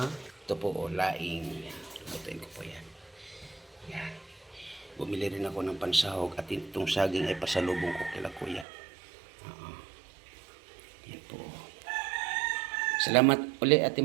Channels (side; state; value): left; drops out; at 8.7 s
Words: Ito po oh, laing. Lutuin ko po yan. Yan. Bumili rin ako ng pansahog at itong saging ay pasalubong ko kila kuya. Yan po. Salamat uli Ate